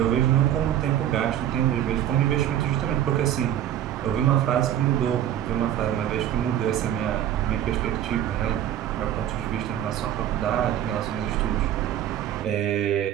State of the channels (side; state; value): left; quieter; 11.2 dB